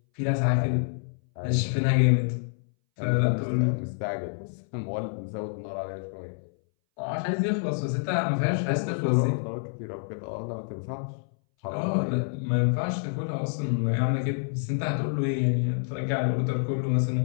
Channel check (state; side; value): silent; right; 60 dB below the other